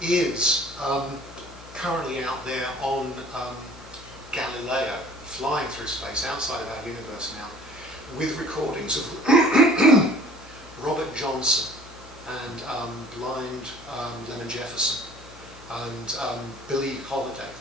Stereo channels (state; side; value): noise; left; hum, 19 dB below the sound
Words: currently out there on Galileo, flying through space outside of our universe now, with recordings of Robert Johnson and blind Lemon Jefferson and Billie Holiday,